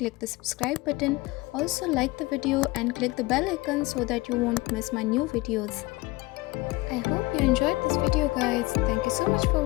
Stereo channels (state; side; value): quieter; right; 21.9 dB